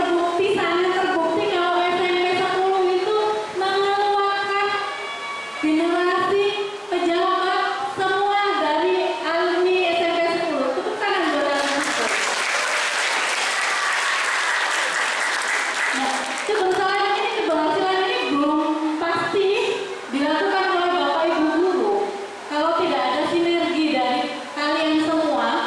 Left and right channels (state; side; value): identical; both; correlation 1.00